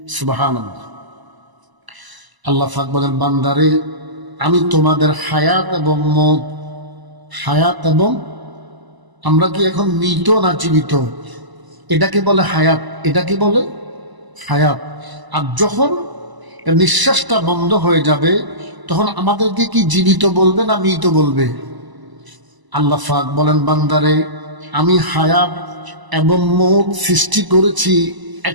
সুবহানাল্লাহ। আল্লাহ পাক বলেন বান্দারে আমি তোমাদের হায়াত এবং মওত, হায়াত এবং, আমরা কি এখন মৃত না জীবিত? এটাকে বলে হায়াত, এটাকে বলে হায়াত। আর যখন নিঃশ্বাসটা বন্ধ হয়ে যাবে তখন আমাদেরকে কি জীবিত বলবে না মৃত বলবে? আল্লাহ পাক বলেন বান্দারে আমি হায়াত এবং মওত সৃষ্টি করেছি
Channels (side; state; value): left; late; 1.0 ms